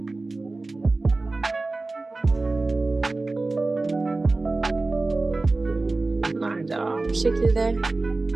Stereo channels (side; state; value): left; quieter; 3.3 dB